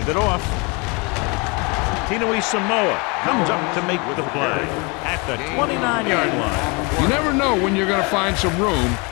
it off. Tinui Samoa comes up to make the play at the 29-yard line. You never know when you're going to find some room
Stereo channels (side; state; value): right; quieter; 29.4 dB